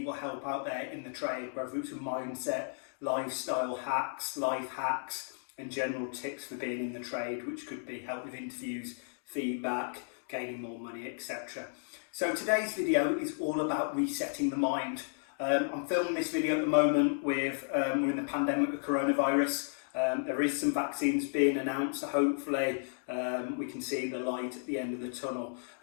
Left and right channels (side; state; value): right; silent; digital silence